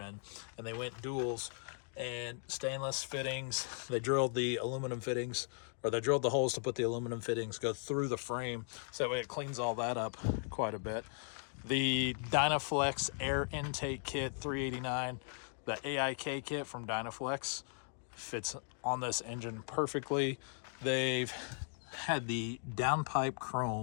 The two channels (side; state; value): right; silent; 53 dB below the other